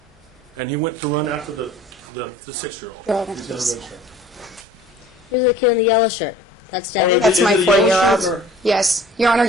And he went to run after the 6-year-old. Oh, He's got a red shirt. Who's the kid in the yellow shirt? That's Oh, Daniel. That's Is my it a yellow shirt 4-year-old. or- Yes. Your Honor,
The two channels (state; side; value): normal; both; correlation 0.47